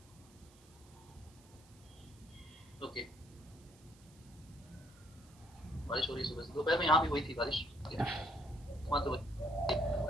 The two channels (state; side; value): noise; right; hiss, 26 dB below the sound